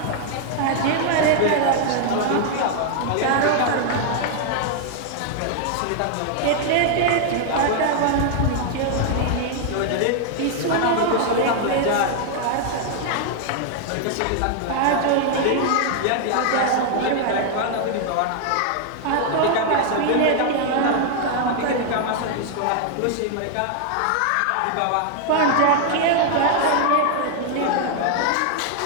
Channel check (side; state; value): both; different; correlation 0.00